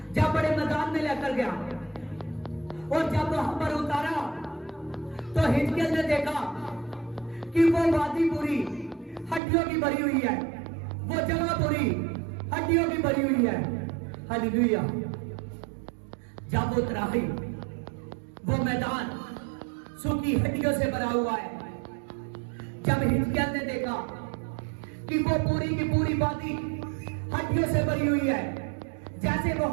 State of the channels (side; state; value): left; drops out; at 9.4 s